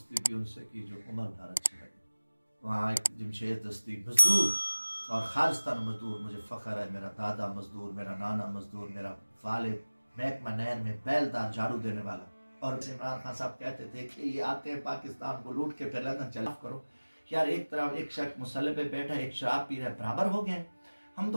भी उनसे की जो उम्र भर अच्छी लगे। वहाँ एक जमशेद दस्ती मजदूर और खालिस्तान मजदूर, मुझे फ़ख्र है, मेरा दादा मजदूर, मेरा नाना मजदूर, मेरा वालिद महकमा नहर में बैलदार झाड़ू देने वाला। और इमरान खान साहब कहते थे कि ये आते हैं पाकिस्तान को लूट के फिर लंदन चला करो। यार एक तरफ एक शख्स मुसल्ले पे बैठा, एक शराब पी रहा है, बराबर हो गए। हम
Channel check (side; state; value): both; inverted; correlation -1.00